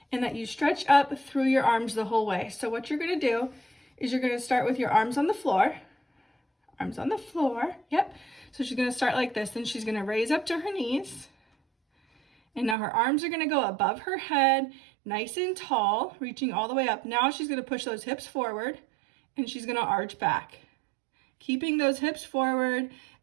and that you stretch up through your arms the whole way. So what you're gonna do is you're gonna start with your arms on the floor. Arms on the floor, yep. So she's gonna start like this, then she's gonna raise up to her knees. And now her arms are gonna go above her head, nice and tall, reaching all the way up. Now she's gonna push those hips forward and she's gonna arch back. Keeping those hips forward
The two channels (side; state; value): left; drops out; at 12.8 s